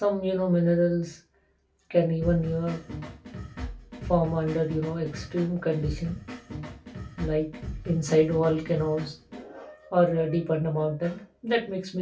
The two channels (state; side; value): identical; both; correlation 1.00